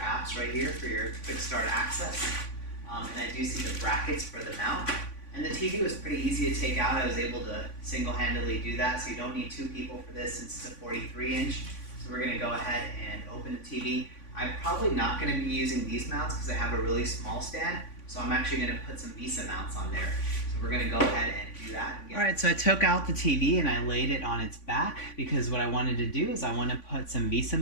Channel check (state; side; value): late; right; 3.5 ms